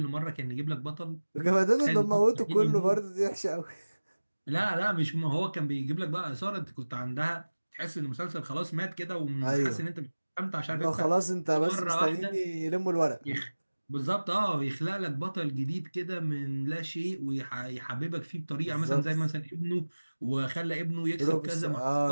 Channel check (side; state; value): both; inverted; correlation -1.00